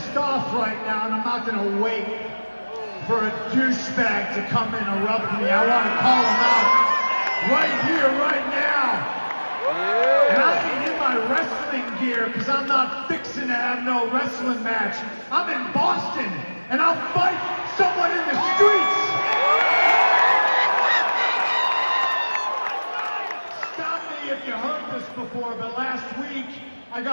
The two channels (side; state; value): both; inverted; correlation -1.00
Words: off right now, and I'm not gonna wait for a douchebag to come interrupt me. I want to call him out right here, right now. And I ain't in my wrestling gear because I'm not fixing to have no wrestling match. I'm in Boston, and I'll fight someone in the streets. Stop me if you heard this before, but last week I